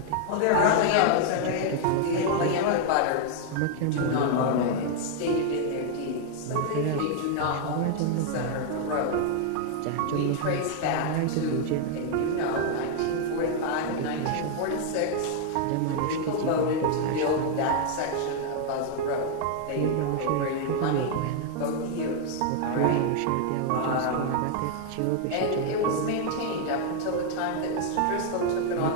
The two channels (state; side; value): different; both; correlation 0.00